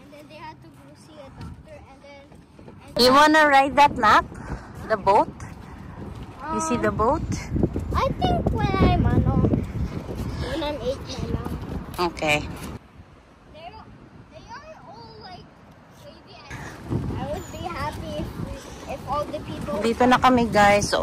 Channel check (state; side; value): identical; both; correlation 1.00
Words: then they had to go see a doctor and then... You wanna ride that map? The boat? You see the boat? I think when I'm 8 na lang. Okay. They are all like baby. I would be happy if all the people... Dito na kami, guys.